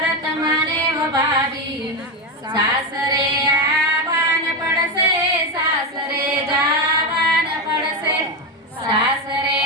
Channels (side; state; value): both; normal; correlation 0.12